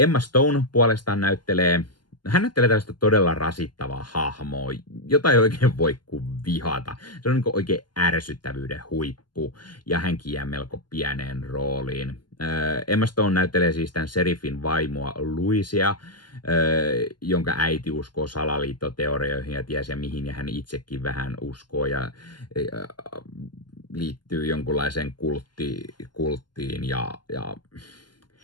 Stone puolestaan näyttelee tällaista todella rasittavaa hahmoa, jota ei oikein voi kuin vihata. Se on niin kuin oikein ärsyttävyyden huippu ja hänkin jää melko pieneen rooliin. Emma Stone näyttelee siis tämän seriffin vaimoa Louisia, jonka äiti uskoo salaliittoteorioihin ja ties ja mihin, ja hän itsekin vähän uskoo ja liittyy jonkunlaiseen kulttiin ja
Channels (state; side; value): late; right; 0.71 ms